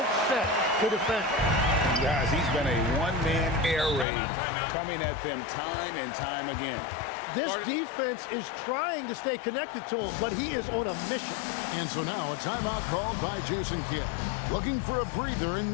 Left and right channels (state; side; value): drops out; right; at 4.0 s